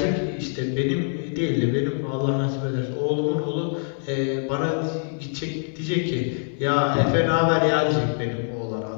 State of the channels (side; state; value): right; silent; digital silence